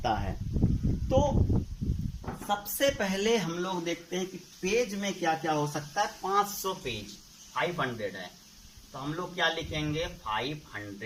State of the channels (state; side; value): identical; both; correlation 1.00